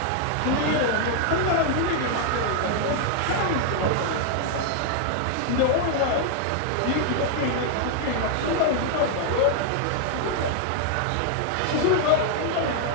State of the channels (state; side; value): different; both; correlation 0.00